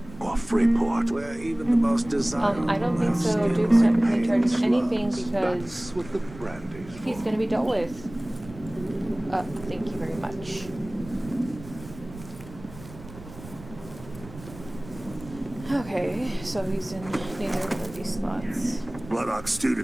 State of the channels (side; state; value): right; noise; rumble, 16 dB below the sound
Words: or Freeport, where even the most desirable. I don't think so. Duke's not in charge of anything because what the brandy's he's going to be dealt with. Thank you very much. so he's in neither of these slots. Bloodhawk stew